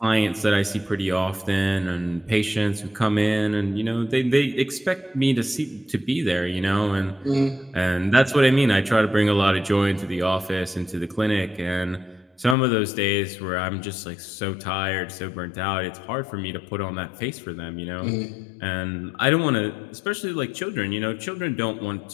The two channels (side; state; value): right; drops out; at 12.6 s